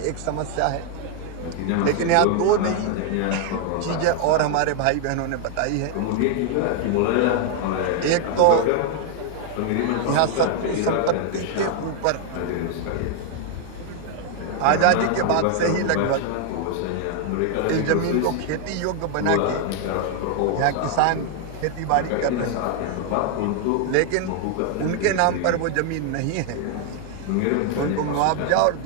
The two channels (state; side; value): different; both; correlation 0.00